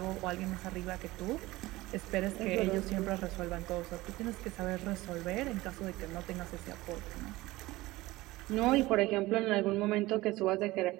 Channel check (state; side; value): quieter; left; 19.2 dB